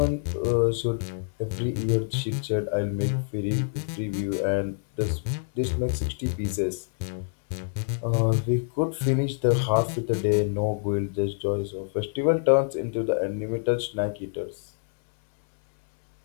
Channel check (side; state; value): right; silent; 61 dB below the other